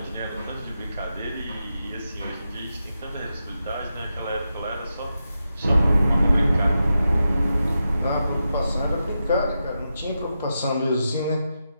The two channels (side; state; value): both; inverted; correlation -0.88